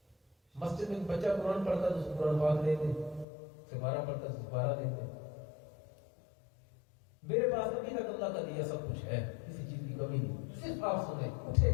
مسجد میں بچہ قرآن پڑھتا ہے تو اس کو قرآن پاک دے دیں، سپارہ پڑھتا ہے تو سپارہ دے دیں۔ میرے پاس ابھی تک اللہ کا دیا سب کچھ ہے، کسی چیز کی کمی نہیں، صرف آپ سنیں، اٹھیں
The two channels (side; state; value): right; drops out; at 3.2 s